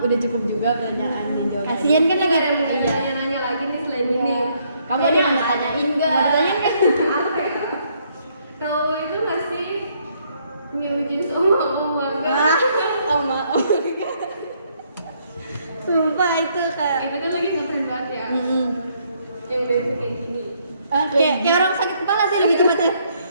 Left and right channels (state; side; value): inverted; both; correlation -0.70